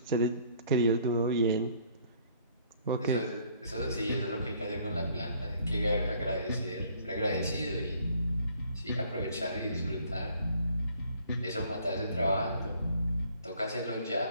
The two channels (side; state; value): both; inverted; correlation -0.60